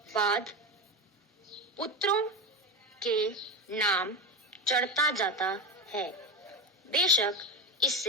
बाद पुत्रों के नाम चढ़ता जाता है। बेशक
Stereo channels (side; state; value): both; normal; correlation 0.19